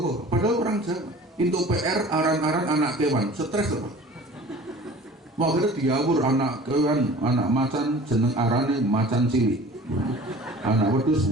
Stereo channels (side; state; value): both; normal; correlation 0.44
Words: padahal orang Jawa. Untuk PR aran-aran anak kewan, stres apa? Mau kira diawur anak kewan, anak macan jeneng arane macan cilik, anak wedus